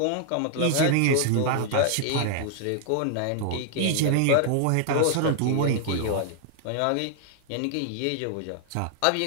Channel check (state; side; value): different; both; correlation 0.00